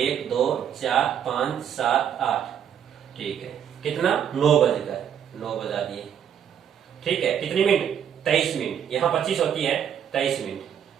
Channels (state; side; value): quieter; left; 8.8 dB